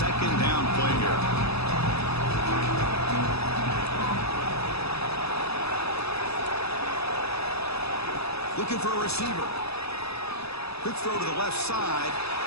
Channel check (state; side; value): late; right; 0.78 ms